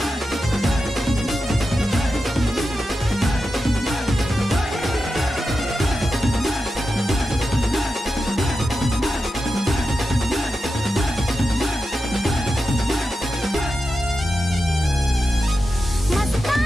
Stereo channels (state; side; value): normal; both; correlation 0.90